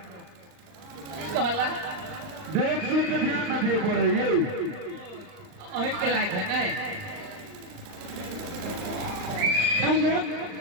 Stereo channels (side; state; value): left; late; 39 ms